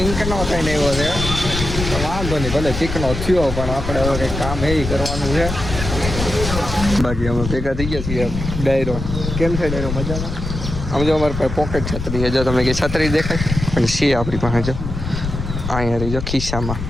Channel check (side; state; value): left; noise; rumble, 5 dB below the sound